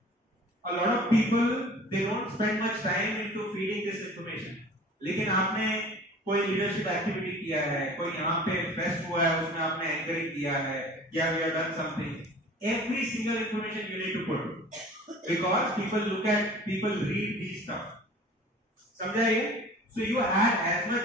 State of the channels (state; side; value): normal; both; correlation 0.44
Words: A lot of people they don't spend much time into feeding this information. लेकिन आपने कोई leadership activity किया है, कोई यहाँ पे fest हुआ है, उसमें आपने anchoring किया है, या we have done something. Every single information you need to put because people read these stuff. समझा ये? So you add as